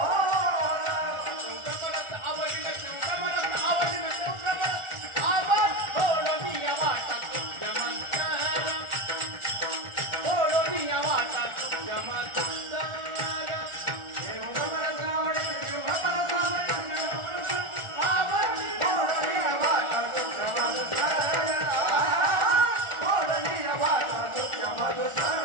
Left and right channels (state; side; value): late; left; 1.4 ms